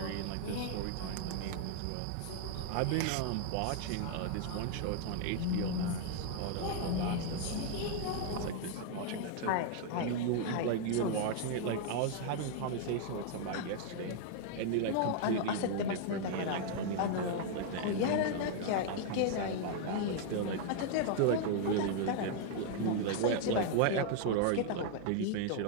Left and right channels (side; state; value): both; different; correlation 0.00